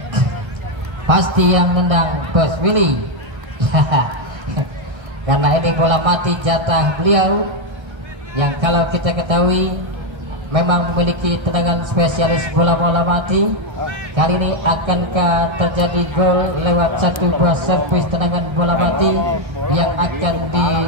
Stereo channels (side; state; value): left; late; 1.3 ms